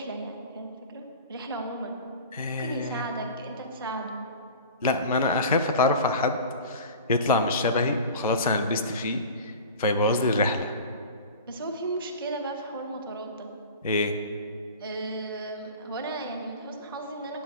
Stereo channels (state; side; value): inverted; both; correlation -0.37